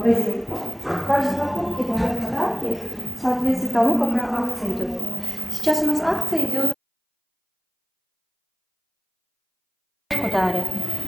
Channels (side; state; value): both; identical; correlation 1.00